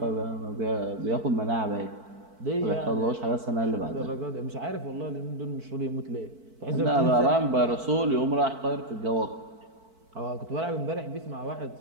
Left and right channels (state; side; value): late; left; 4.5 ms